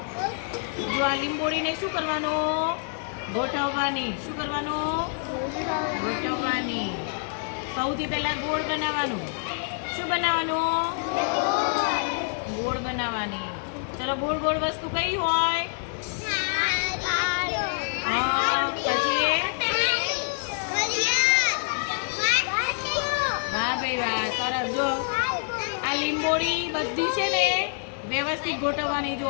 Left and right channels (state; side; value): silent; right; 58 dB below the other